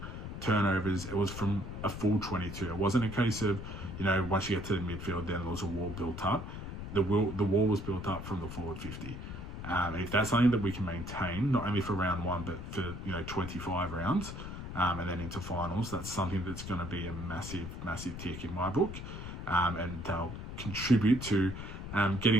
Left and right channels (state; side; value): noise; left; rumble, 8 dB below the sound